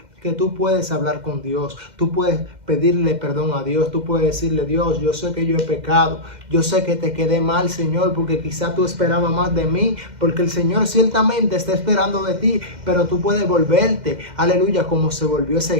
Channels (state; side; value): late; left; 2.1 ms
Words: que tú puedes hablar con Dios, tú puedes pedirle perdón a Dios, tú puedes decirle: Dios, yo sé que yo he pecado, yo sé que te quedé mal, Señor, porque quizá tú esperabas más de mí, porque el Señor ciertamente está esperando de ti, pero tú puedes volverte, aleluya, como se volvió